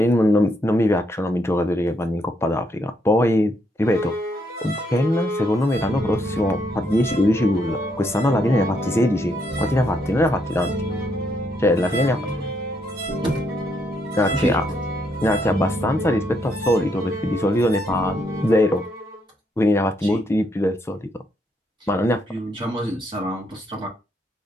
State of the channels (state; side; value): normal; both; correlation 0.75